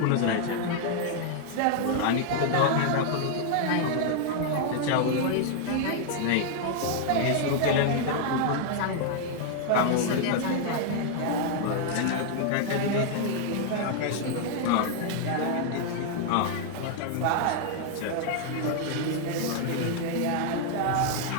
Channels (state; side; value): different; both; correlation 0.00